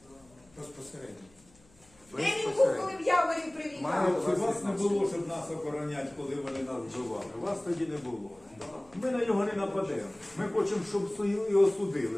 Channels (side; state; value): left; noise; hum, 29 dB below the sound